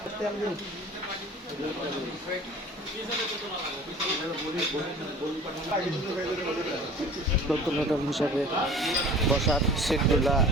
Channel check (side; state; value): both; normal; correlation 0.44